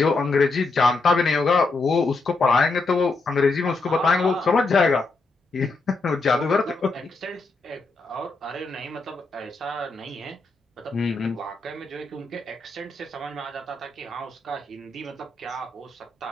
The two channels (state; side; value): quieter; right; 3.5 dB